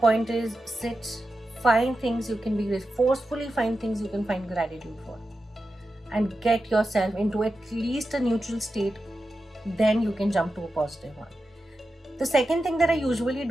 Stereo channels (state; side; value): normal; both; correlation 0.91